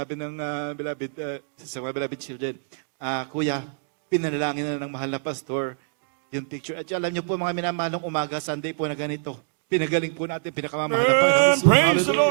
ng beloved, sa mga beloved children, Kuya, pinanalangin na ng mahal na pastor yung picture. At alam niyo po mga minamahalong umaga, Sunday po na ganito. Pinagaling po natin, pinakamamahal na Panginoon. Praise the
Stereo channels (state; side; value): silent; left; digital silence